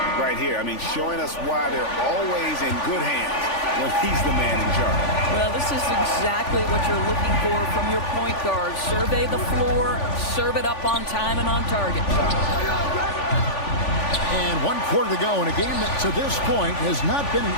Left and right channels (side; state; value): right; late; 3.5 ms